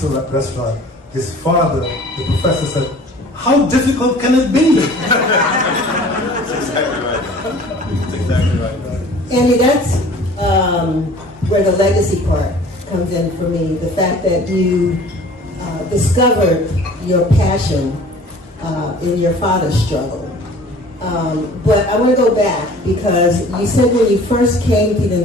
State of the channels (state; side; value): normal; both; correlation 0.48